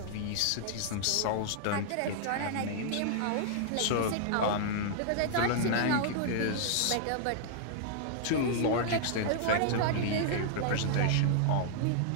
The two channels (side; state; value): both; different; correlation -0.01